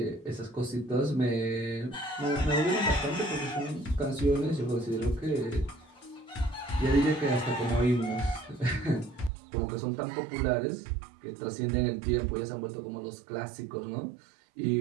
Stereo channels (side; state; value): left; drops out; at 9.3 s